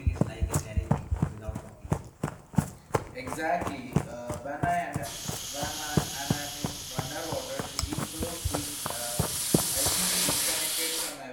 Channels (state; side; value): identical; both; correlation 1.00